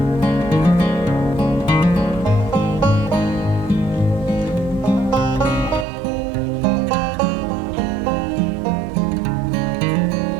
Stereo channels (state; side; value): drops out; left; at 5.9 s